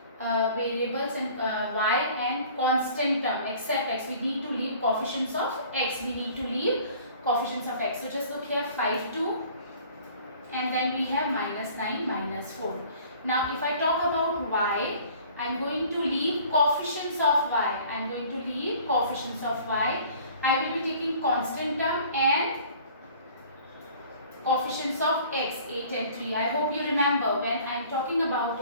variables and y and constant term except x. We need to leave coefficients of x. We need to leave coefficients of x. So just look here, 5, 2, and then we have minus 9, minus 4. Now if I talk about y, I am going to leave coefficients of y. I am going to leave coefficients of y. I will be taking constant term and coefficients of x, 8 and 3. I hope you remember when I am talking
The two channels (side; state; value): both; inverted; correlation -0.50